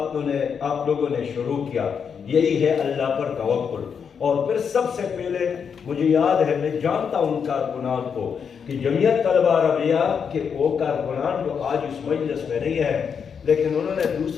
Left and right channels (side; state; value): right; quieter; 6.8 dB